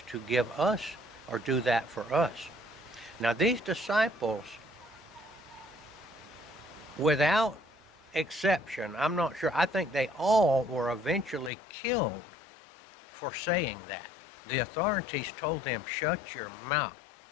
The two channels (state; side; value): drops out; right; at 11.5 s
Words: to give us, or do that for us. Now, these disciples, without exception, I'm not sure, I think they all were eventually killed for saying that. The authorities told them, shut your mouth.